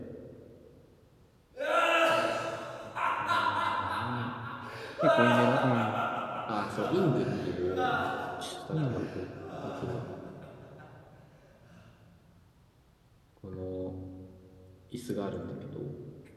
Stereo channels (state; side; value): identical; both; correlation 1.00